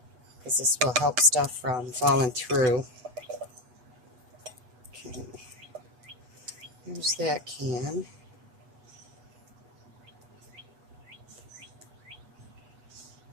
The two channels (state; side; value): late; left; 8.1 ms